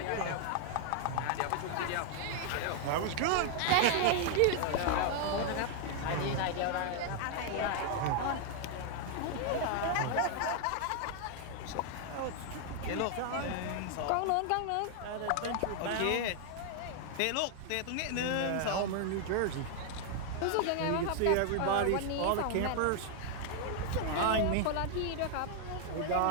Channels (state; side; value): different; both; correlation 0.00